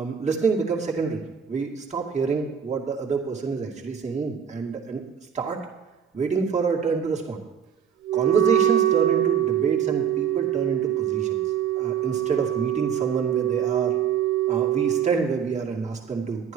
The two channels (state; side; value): quieter; left; 7.7 dB